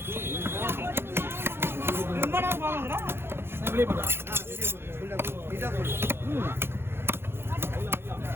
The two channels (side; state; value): left; late; 0.11 ms